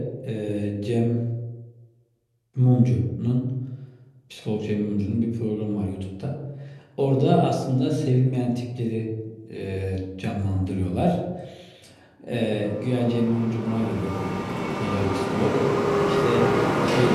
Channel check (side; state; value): both; identical; correlation 1.00